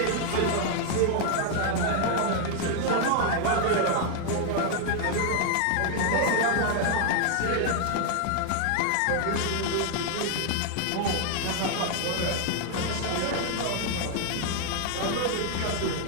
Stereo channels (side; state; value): both; different; correlation 0.00